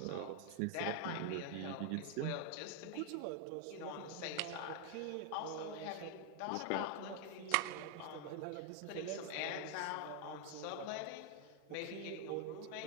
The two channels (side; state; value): both; different; correlation 0.00